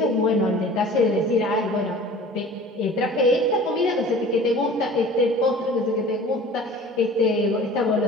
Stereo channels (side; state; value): both; normal; correlation 0.44